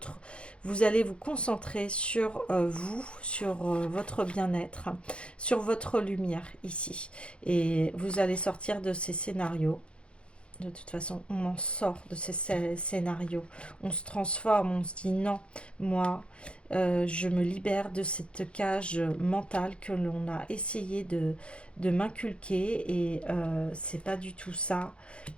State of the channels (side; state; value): right; late; 0.058 ms